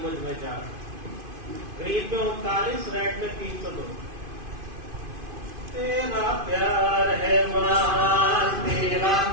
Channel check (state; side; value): late; left; 2.5 ms